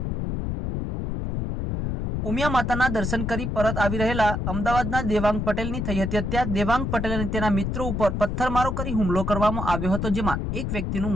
ઉમિયા માતાના દર્શન કરી પરત આવી રહેલા અમદાવાદના દેવાંગ પટેલની થઈ હતી હત્યા। દેવાંગ પટેલ અને તેના મિત્રો ઉપર પથ્થરમારો કરી હુમલો કરવામાં આવ્યો હતો, જેમાં એક વ્યક્તિનું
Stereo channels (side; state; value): left; noise; rumble, 2 dB below the sound